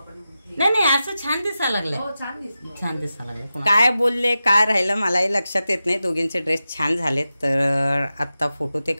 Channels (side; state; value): both; inverted; correlation -0.92